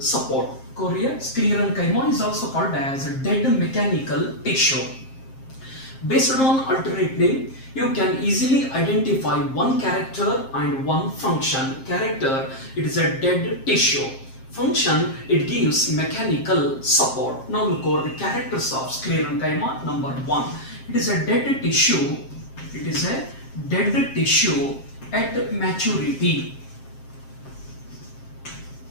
Korea, Sclerenchyma is also called as a dead mechanical tissue. Based on alternate name, you can easily identify one character and one function. Character, it is a dead tissue. Function, it gives mechanical support. Now we'll cover the characters of Sclerenchyma. Number 1, it is a dead tissue. It is a dead tissue at maturity.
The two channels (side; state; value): right; late; 7.5 ms